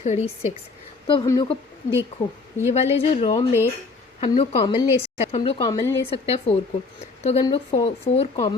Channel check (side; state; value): right; quieter; 4.0 dB